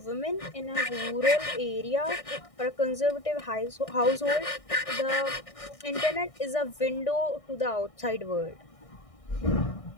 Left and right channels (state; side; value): late; right; 1.6 ms